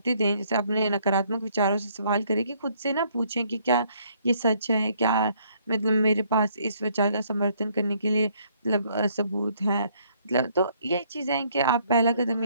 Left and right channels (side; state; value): both; inverted; correlation -0.66